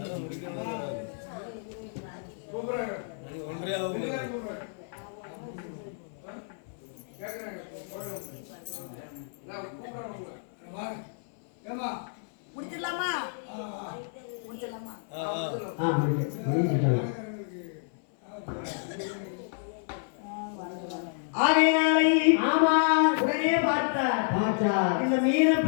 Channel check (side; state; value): right; silent; 58 dB below the other